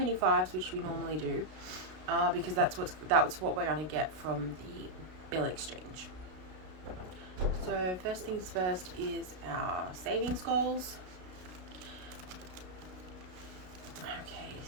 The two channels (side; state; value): left; late; 33 ms